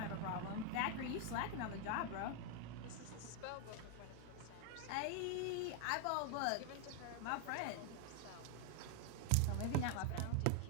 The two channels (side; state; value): both; different; correlation 0.00